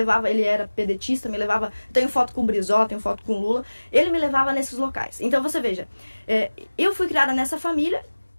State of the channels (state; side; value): inverted; both; correlation -1.00